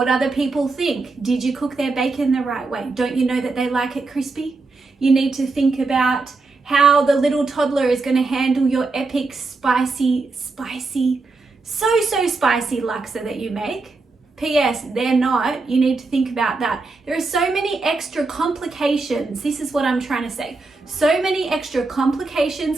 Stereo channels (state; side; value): quieter; left; 3.7 dB